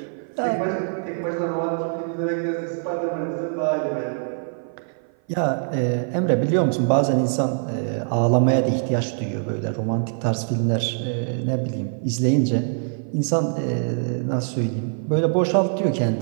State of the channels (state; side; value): silent; left; 56 dB below the other